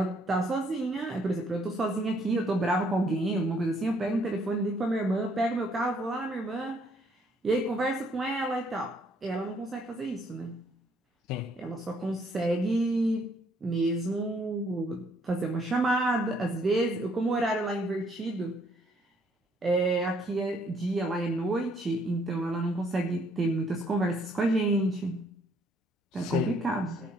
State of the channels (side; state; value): both; normal; correlation 0.67